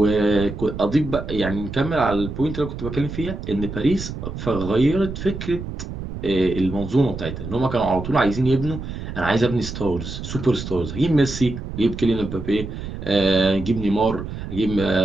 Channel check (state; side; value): noise; right; rumble, 8 dB below the sound